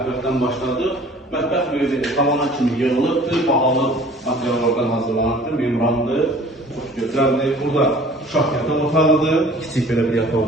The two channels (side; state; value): both; normal; correlation 0.49